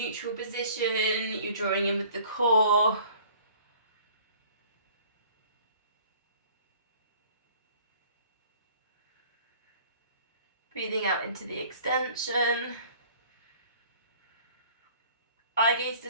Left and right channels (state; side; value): inverted; both; correlation -0.51